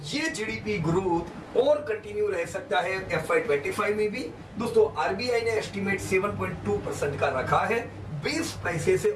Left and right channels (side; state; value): both; identical; correlation 1.00